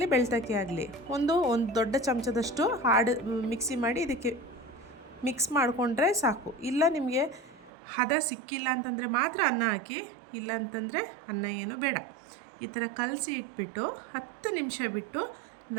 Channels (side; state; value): left; drops out; at 7.7 s